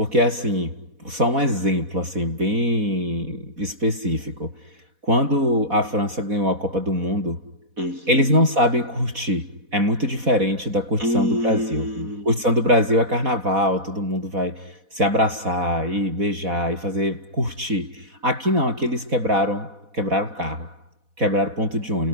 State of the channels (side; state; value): left; late; 4.1 ms